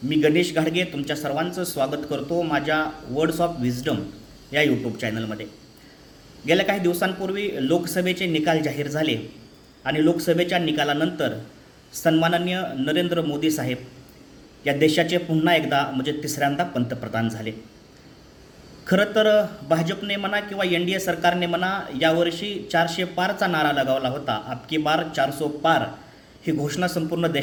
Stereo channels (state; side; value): identical; both; correlation 1.00